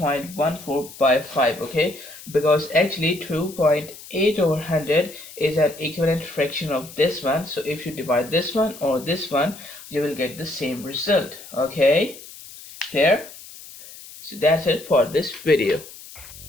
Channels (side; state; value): left; noise; hiss, 17 dB below the sound